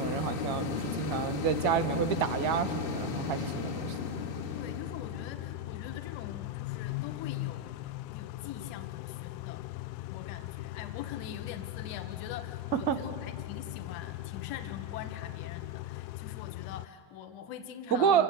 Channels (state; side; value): late; right; 2.6 ms